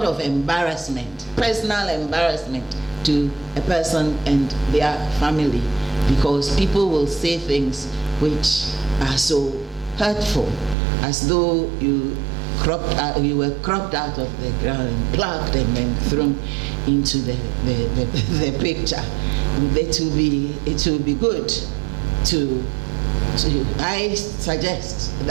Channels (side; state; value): left; drops out; at 10.8 s